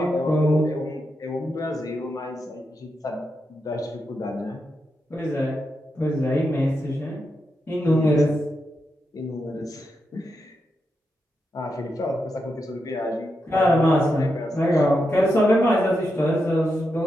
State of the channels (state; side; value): normal; both; correlation 0.85